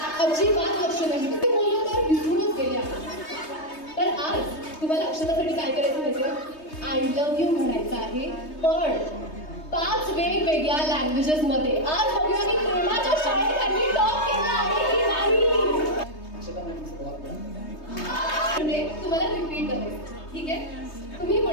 अजिबात लक्ष नाही ते बोललो तर विसरूनच गेले आहे. तर आज तुम्हाला अक्षतासाठी काय करायचं माहिती आय लव्ह यू म्हणायचं आहे पण 5 वेगवेगळ्या लँग्वेजेस मध्ये. आज बघूया की प्रेमाच्या शाळेत त्यांनी टॉप केला आहे की नाही. म्हणजे तुम्हाला रिपीट करायचं ठीक आहे. तुम्ही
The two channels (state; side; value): late; right; 3.2 ms